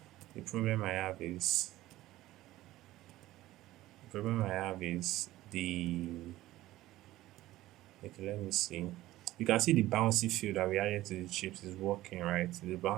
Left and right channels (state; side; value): quieter; left; 16.1 dB